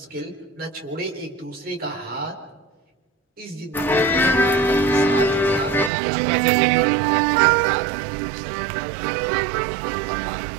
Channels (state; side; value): drops out; left; at 5.9 s